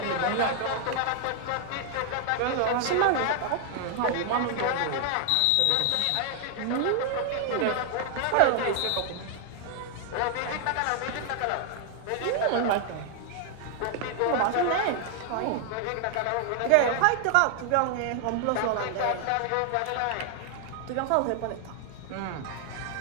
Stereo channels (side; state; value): both; different; correlation 0.00